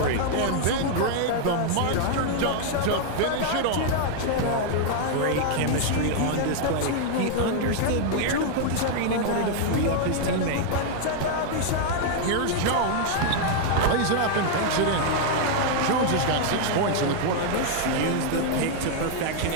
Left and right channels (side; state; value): both; different; correlation 0.00